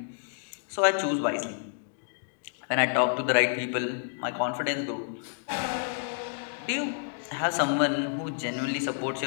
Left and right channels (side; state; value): right; silent; digital silence